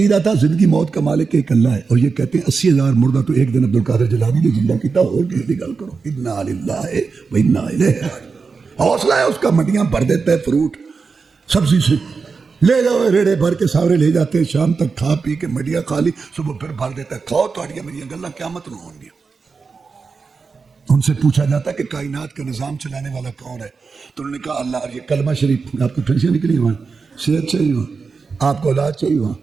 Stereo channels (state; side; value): quieter; left; 4.9 dB